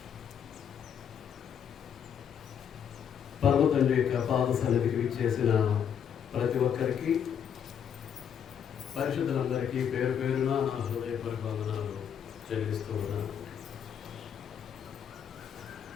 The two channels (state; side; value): quieter; right; 8.2 dB